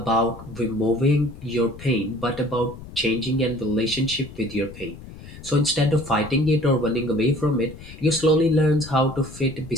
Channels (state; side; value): noise; left; rumble, 15 dB below the sound